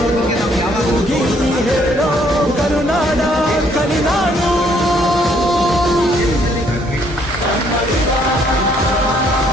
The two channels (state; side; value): normal; both; correlation 0.66